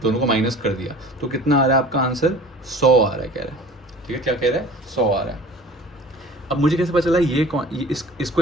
दोनों को माइनस कर दिया तो कितना आ रहा है आपका आंसर? 100 आ रहा है, कह रहा है, ठीक है। क्या कह रहा है? 100 आ रहा है। अब मुझे कैसे पता चला ये कौन,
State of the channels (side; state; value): both; normal; correlation 0.44